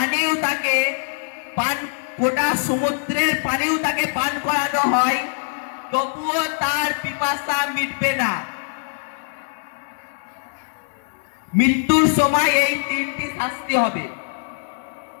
তাকে গোটা সমুদ্রের পানিও তাকে পান করানো হয়, তবুও তার পিপাসা মিটবে না। মৃত্যুর সময় এই 3টি শাস্তি হবে।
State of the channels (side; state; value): right; silent; digital silence